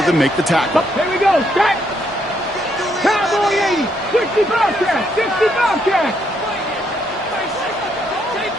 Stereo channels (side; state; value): both; normal; correlation 0.74